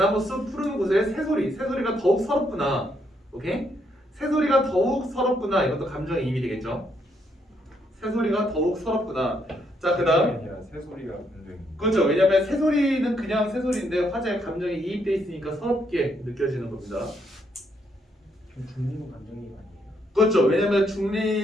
숲 푸른 곳에 새소리가 더욱 서럽구나. 오케이? 새소리가 더욱 서럽구나. 이것도 감정이입이 되겠죠. 새소리가 더욱 서럽구나. 자, 그다음 새소리가 굉장히 그렇죠. 왜냐하면 새소리는 그냥 새소리인데 화자의 감정이 이입돼 있으니까 서럽게 느껴지는 겁니다. 중립은 감정이 아니에요. 그렇죠. 왜냐하면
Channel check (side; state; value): both; normal; correlation 0.74